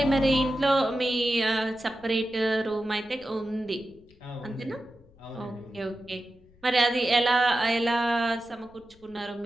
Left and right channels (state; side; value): noise; left; rumble, 27 dB below the sound